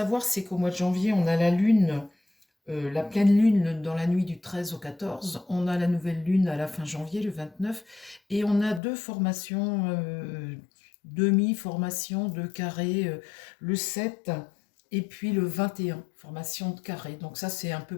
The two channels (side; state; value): right; drops out; at 8.8 s